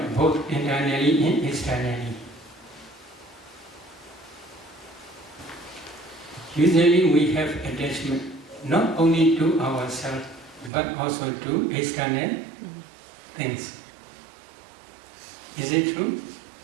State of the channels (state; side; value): drops out; left; at 10.7 s